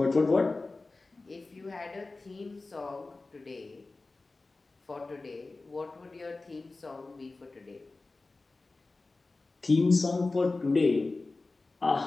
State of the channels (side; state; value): right; quieter; 3.4 dB